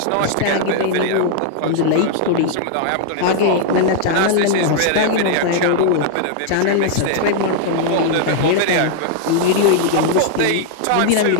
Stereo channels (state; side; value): different; both; correlation -0.01